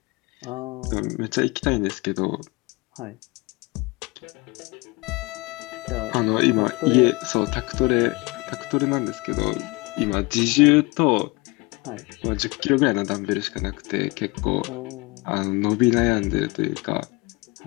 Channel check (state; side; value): quieter; right; 25.6 dB